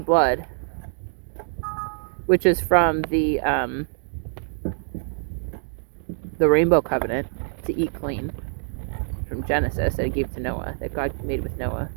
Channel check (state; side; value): silent; left; digital silence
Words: which is from the Rainbow Covenant, to eat clean, from Genesis, that he gave to Noah, that God made with Noah.